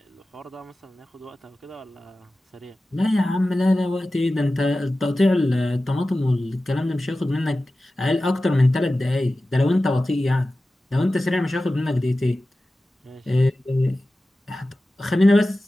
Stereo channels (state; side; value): normal; both; correlation 0.95